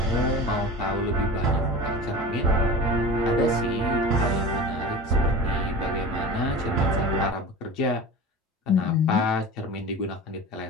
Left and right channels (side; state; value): both; normal; correlation 0.34